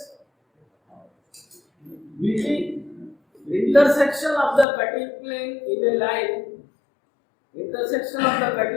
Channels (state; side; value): drops out; right; at 4.7 s